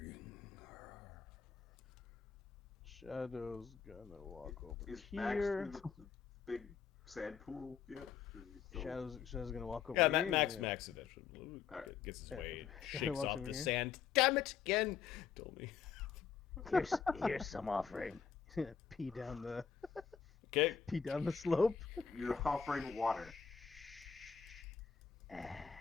Shadow's gonna walk over Is Max here. in the big sand pool yet? Shadow's gonna walk over Yeah, here. Max eventually gets his way, Shadow shakes walks off over the here. sand. Damn it, again! Told me. Here's some offering. pee down the Okay. slope. You're offering water.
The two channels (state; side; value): quieter; right; 6.9 dB